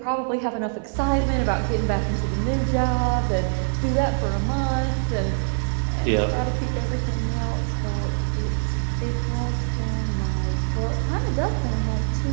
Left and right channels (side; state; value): left; silent; digital silence